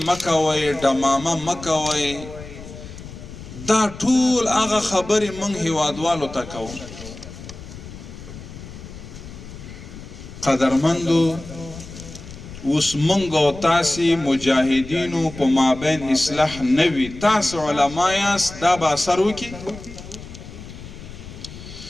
مکوی دماما مکوی دا طول آغا خبری منگ حوادوالو تاکو قدرمندو اس منگو تاسی مجاہدینو پا مابین اصلاح نوی تاس علمایاس دا با سرو کی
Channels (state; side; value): noise; left; rumble, 14 dB below the sound